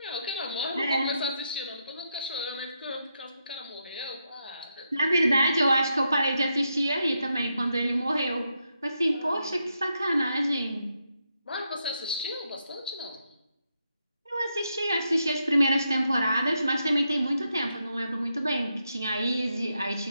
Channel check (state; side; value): inverted; both; correlation -0.82